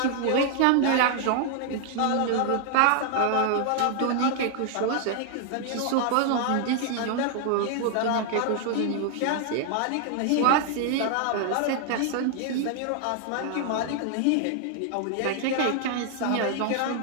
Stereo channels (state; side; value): different; both; correlation 0.00